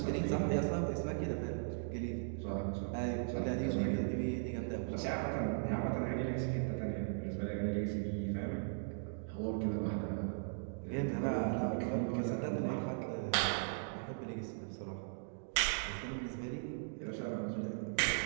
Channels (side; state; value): left; silent; digital silence